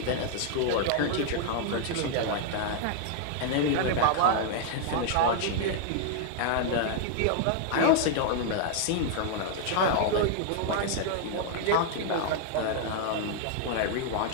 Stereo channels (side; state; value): both; different; correlation 0.00